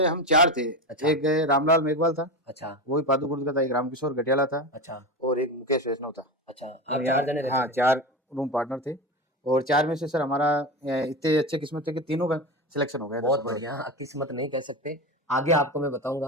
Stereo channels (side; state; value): both; normal; correlation 0.22